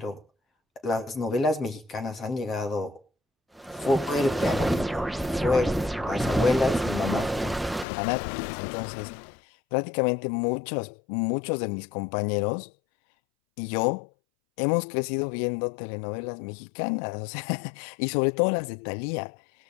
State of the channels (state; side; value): drops out; right; at 7.9 s